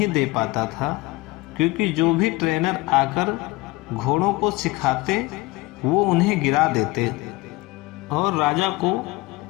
दे पाता था, क्योंकि जो भी ट्रेनर आकर घोड़ों को सिखाते वो उन्हें गिरा देते। और राजा को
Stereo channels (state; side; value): quieter; right; 20.7 dB